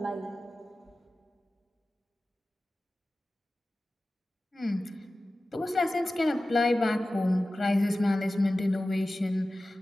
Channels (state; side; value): normal; both; correlation 0.96